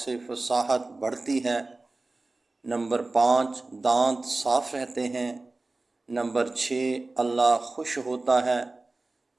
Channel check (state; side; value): quieter; left; 3.2 dB